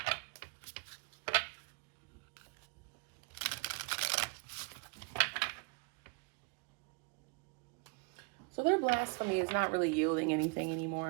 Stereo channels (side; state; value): left; quieter; 33.9 dB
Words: So their blasphemy is not really yielding anything